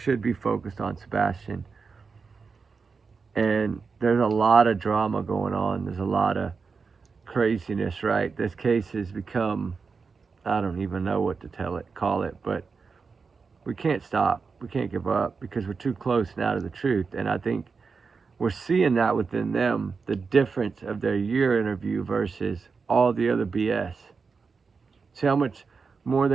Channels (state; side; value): quieter; left; 5.0 dB